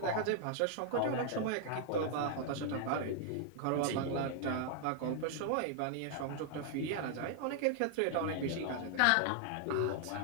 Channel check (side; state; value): both; different; correlation 0.00